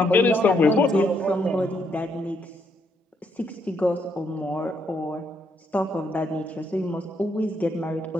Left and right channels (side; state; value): both; normal; correlation 0.75